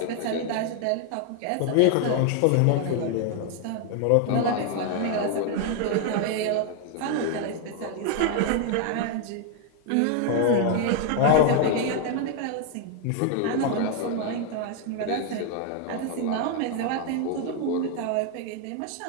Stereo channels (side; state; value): both; different; correlation 0.00